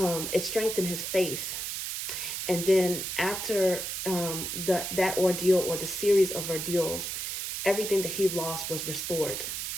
strengthened his faith. And then after that ordeal, or the series of ordeals, everything that he lost was restored,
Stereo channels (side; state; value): right; noise; hiss, 4 dB below the sound